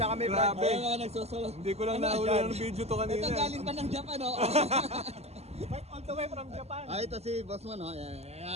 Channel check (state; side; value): late; left; 0.30 ms